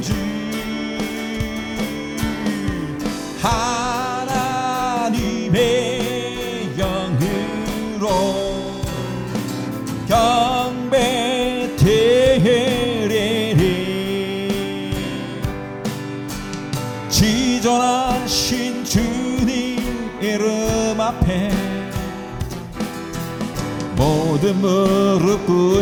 주 하나님의 영으로 경배드리니 지존하신 주님 이름 앞에 모든 무릎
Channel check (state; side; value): identical; both; correlation 1.00